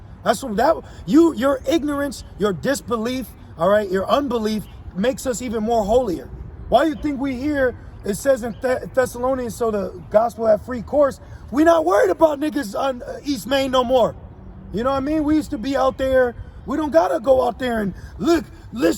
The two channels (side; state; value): both; identical; correlation 1.00